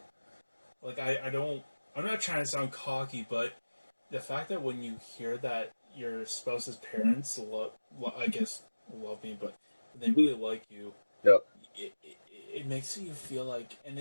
like, I don't. I'm not trying to sound cocky, but the fact that when you hear that your spouse's parents I guess love me, but they really like you, Yep. it makes you feel like, and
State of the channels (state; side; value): inverted; both; correlation -1.00